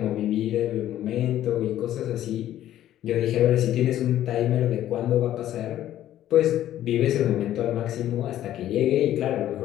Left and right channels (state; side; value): quieter; right; 12.5 dB